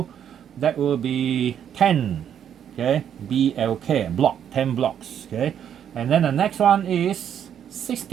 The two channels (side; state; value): left; quieter; 9.1 dB